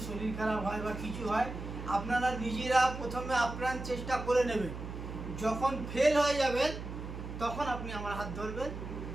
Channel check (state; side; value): noise; right; hum, 8 dB below the sound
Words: শরীর খারাপ হয় বা কিছু হয়, আপনারা নিজেরা প্রথমে আপ্রাণ চেষ্টা করে নেবেন। যখন ফেল হয়ে যাবেন তখন আপনি আমার হাত ধরবেন।